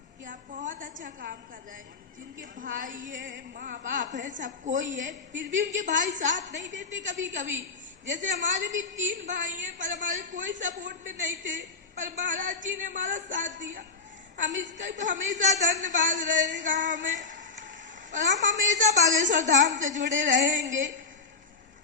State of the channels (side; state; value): right; quieter; 4.3 dB